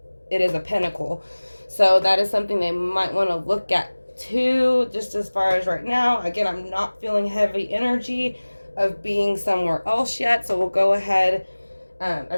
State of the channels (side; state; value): both; inverted; correlation -1.00